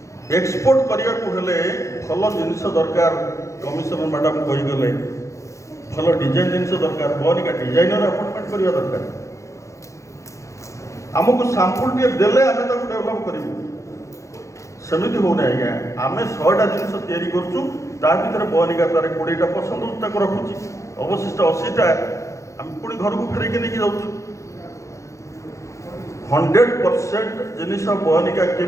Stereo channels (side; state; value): right; late; 0.15 ms